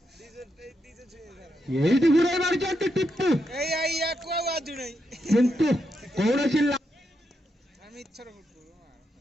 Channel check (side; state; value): both; normal; correlation 0.82